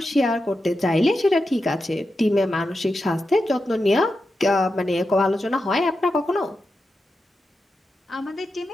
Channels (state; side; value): normal; both; correlation 0.89